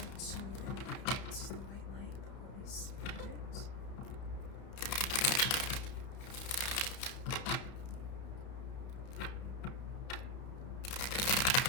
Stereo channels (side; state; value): right; late; 31 ms